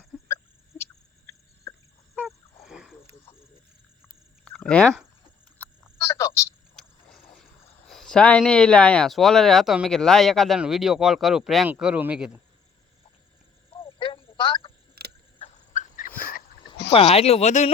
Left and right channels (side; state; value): right; quieter; 5.8 dB